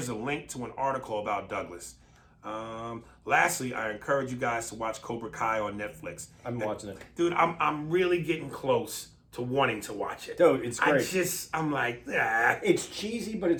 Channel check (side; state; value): both; identical; correlation 1.00